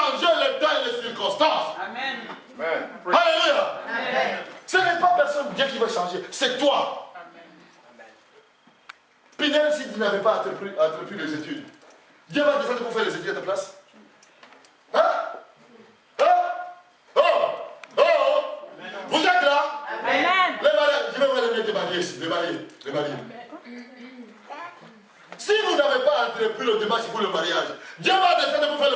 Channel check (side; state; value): both; identical; correlation 1.00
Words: le temps et les circonstances. Amen. Amen. Alléluia. Amen. Ce n'est pas personne Dieu qui va changer, c'est toi. Pinel, si tu n'avais pas entrepris les études, Dieu va descendre pour faire les études à ta place. Hein? Hein? Oh! Oh! Vous êtes là? Amen. Les mariés, je vais vous les mettre mariés ici, les mariés. Si vous n'avez pas entrepris le démarche pour le mariage, Dieu va descendre pour faire